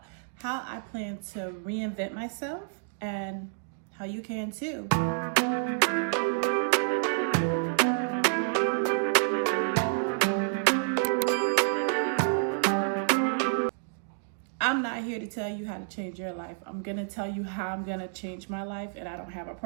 how I plan to reinvent myself and how you can too. I'm not here to tell you how to change your life. I'm going to tell you how I'm going to change my life, and I don't have a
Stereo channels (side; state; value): left; silent; digital silence